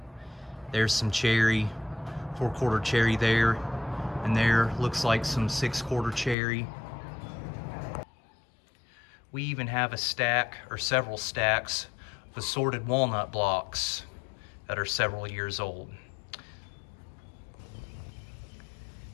there's some cherry, 4/4 cherry there, and there looks like some 6/4 cherry. We even have a stack or several stacks of assorted walnut blocks that are several years old.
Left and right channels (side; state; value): right; drops out; at 6.4 s